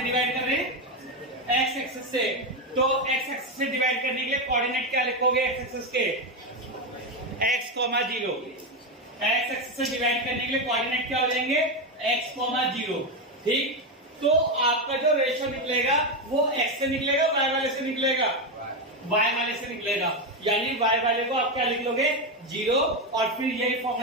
डिवाइड कर रहे हैं x एक्सिस से, तो x एक्सिस से डिवाइड करने के लिए कोऑर्डिनेट क्या लिखोगे x एक्सिस के x, 0। x एक्सिस से डिवाइड करने के लिए कोऑर्डिनेट क्या हो जाएंगे x, 0। ठीक, तो आपका जो रेशियो निकलेगा वो x से निकलेगा, y वाले से निकलेगा, y वाले से निकलेगा, यानी y वाले को आप क्या लिख लोगे 0 और फिर यही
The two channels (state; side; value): normal; both; correlation 0.10